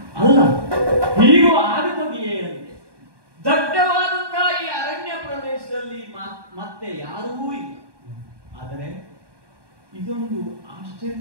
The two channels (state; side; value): late; left; 1.2 ms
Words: ಅಲ್ಲ, ಹೀಗೂ ಆಗುತ್ತದೆಯೇ ಅಂತೆ. ದಟ್ಟವಾದಂತಹ ಈ ಅರಣ್ಯ ಪ್ರದೇಶದಲ್ಲಿ ಮತ್ತೆ ಯಾರೂ ಇಲ್ಲ. ಆದರೆ ಇದೊಂದು